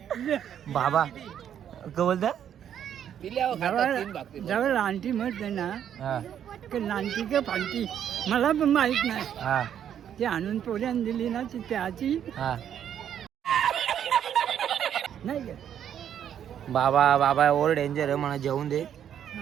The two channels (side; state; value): left; quieter; 9.5 dB